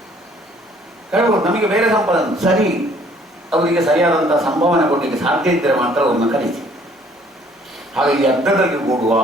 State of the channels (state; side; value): normal; both; correlation 0.60